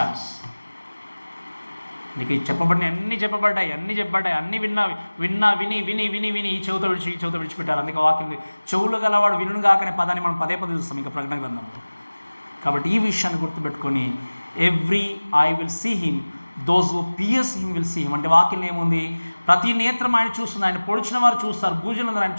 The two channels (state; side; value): inverted; both; correlation -1.00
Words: నీకు చెప్పబడిన అన్నీ చెప్పబడ్డాయి, అన్నీ విని ఈ చెవుతో విడిచిపెట్టారు. అందుకే వాక్యం చెవులు గలవాడు వినును గాకనే పదాన్ని మనం పదే చూస్తాం ఇంకా ప్రకటన గ్రంథంలో. కాబట్టి ఈ విషయాన్ని గుర్తుపెట్టుకొని every I will see him, those who pierce him will see him. అంటే వాక్యం ఏముంది? ప్రతి నేత్రం ఆయన చూస్తుంది, ఆయన పొడిచిన వారు చూస్తారు, భూజనులందరూ ఆయన